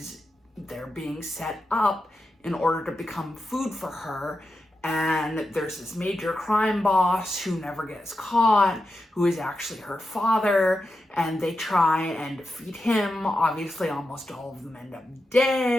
they're being set up in order to become food for her. And there's this major crime boss who never gets caught, who is actually her father, and they try and defeat him. Obviously, almost all of them end up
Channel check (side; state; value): both; normal; correlation 0.89